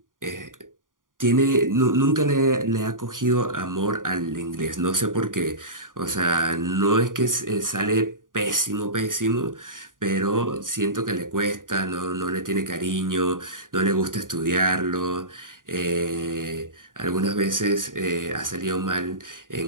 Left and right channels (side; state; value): left; late; 0.89 ms